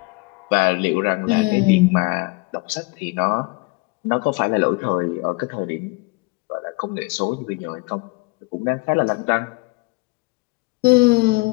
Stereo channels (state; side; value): quieter; right; 25.4 dB